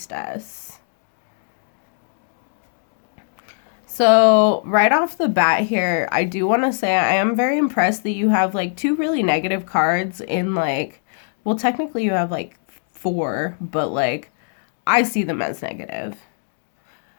So right off the bat here, I do want to say I am very impressed that you have like two really negative cards in like, well, technically you have like four, but like I see them as negative.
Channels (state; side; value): silent; right; 65 dB below the other